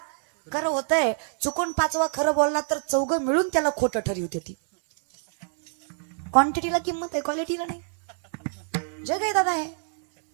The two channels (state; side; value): silent; left; 60 dB below the other